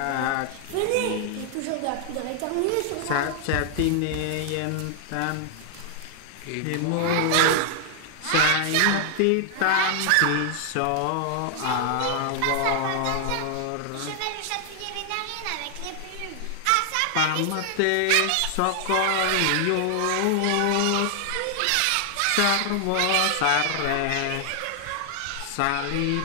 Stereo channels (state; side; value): different; both; correlation 0.00